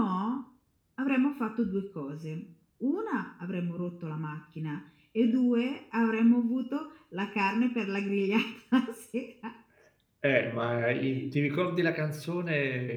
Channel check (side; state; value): both; identical; correlation 1.00